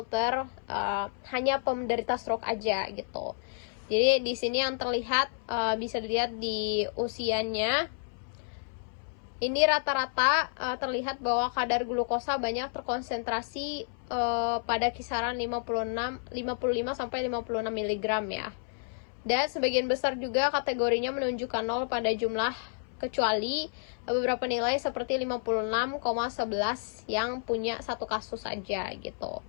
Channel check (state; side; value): silent; right; 58 dB below the other